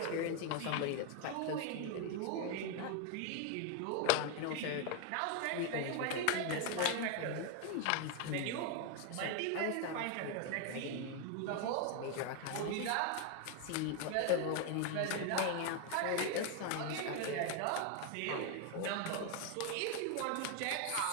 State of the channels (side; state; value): both; different; correlation 0.01